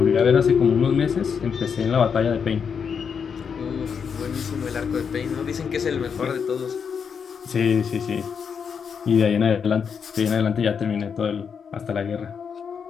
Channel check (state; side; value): quieter; right; 6.6 dB